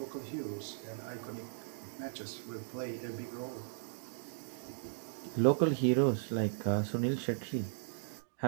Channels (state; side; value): silent; left; digital silence